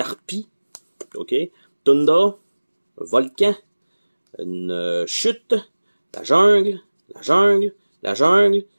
ok, Tundra, volcan, une chute, la jungle, la jungle, la jungle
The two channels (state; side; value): inverted; both; correlation -1.00